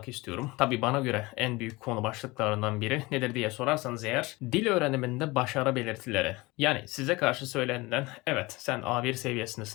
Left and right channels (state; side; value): quieter; right; 22.6 dB